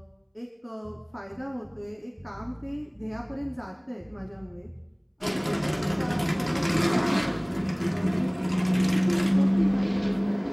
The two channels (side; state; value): both; identical; correlation 1.00